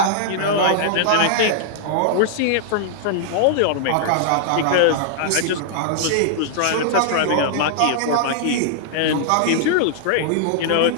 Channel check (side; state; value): both; different; correlation -0.01